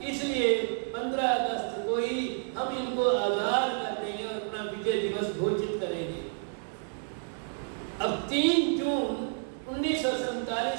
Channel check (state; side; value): silent; left; digital silence